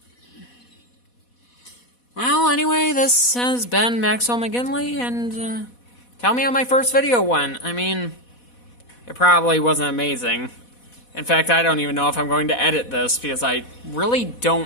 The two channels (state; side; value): late; right; 4.1 ms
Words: Well, anyway, this has been Maxwell McGinley, and tell me how my first video went. I mean, it probably wasn't amazing. In fact, I don't even know if I'm going to edit this, because I really